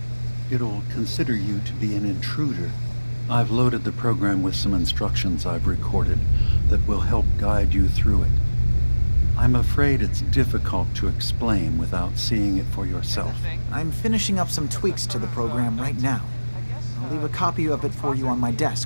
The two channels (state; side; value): inverted; both; correlation -1.00